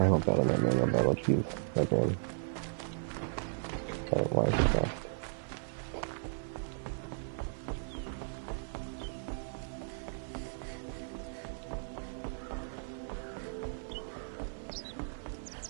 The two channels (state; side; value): silent; left; 54 dB below the other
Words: battle, not manual battle. Jeez, my brain. Why is it fast?